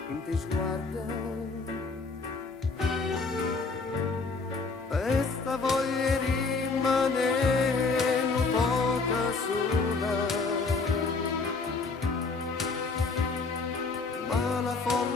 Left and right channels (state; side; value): quieter; right; 4.2 dB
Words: in te sguarda e sta voglia rimane un poco sola, ma la